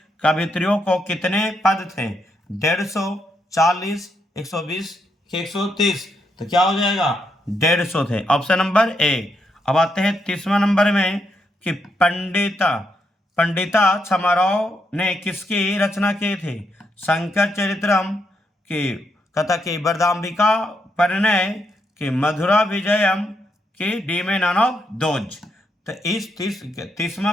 कवित्रियों को कितने पद थे? 150, 40, 120, 130? तो क्या हो जाएगा? 150 थे, ऑप्शन नंबर ए। अब आते हैं 30वां नंबर में कि पंडिता छमाराव ने किसकी रचना की थी? शंकर चरित्रम, की कथा, की वरदाम्बिका परिणय, की मधुरा विजयम, की डीमे नन ऑफ दोज? तो इस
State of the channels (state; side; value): normal; both; correlation 0.79